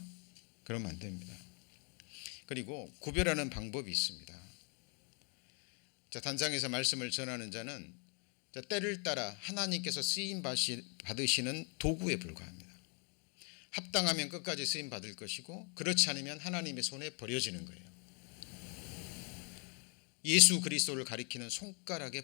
그러면 안 됩니다. 그리고 구별하는 방법이 있습니다. 자, 단상에서 말씀을 전하는 자는 때를 따라 하나님께서 쓰임 받으시는 도구에 불과합니다. 합당하면 끝까지 쓰임 받을 것이고, 그렇지 않으면 하나님의 손에 버려지는 거예요. 예수 그리스도를 가리키는 손가락에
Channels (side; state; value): right; quieter; 36.8 dB